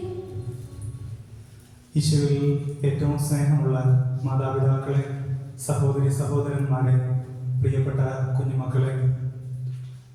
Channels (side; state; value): both; identical; correlation 1.00